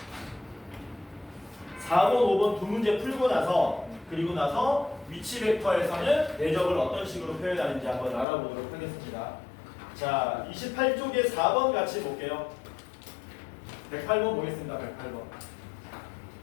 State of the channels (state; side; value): drops out; right; at 8.2 s